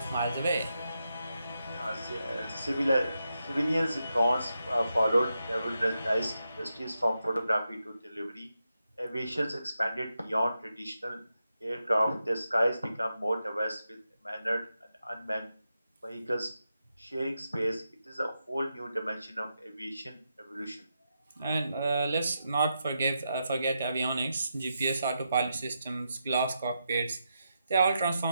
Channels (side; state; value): both; inverted; correlation -0.86